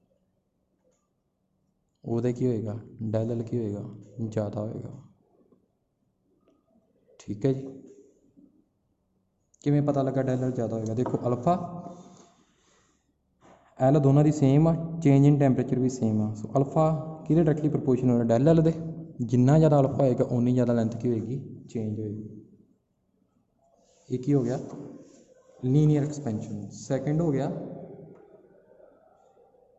ਉਹਦੇ की होएगा डेल एल की होएगा ज़्यादा होएगा। ठीक है जी, किमें पता लगा डेल एल ज़्यादा होएगा। देखो अल्फा एल दोनों की सेम आ, चेंज इन टैंपरेचर भी सेम आ। सो अल्फा कि डायरैक्टली प्रपोर्शनल डेल एल दे, जिन्ना ज़्यादा अल्फा होएगा उन्नी ज़्यादा लेंथ की होएगी चेंज होएगी। एक ही हो गया लीनियर एक्सपेंशन। सैकेंड हो गया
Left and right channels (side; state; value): both; identical; correlation 1.00